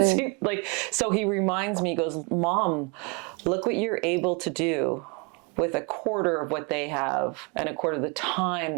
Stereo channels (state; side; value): quieter; left; 31.9 dB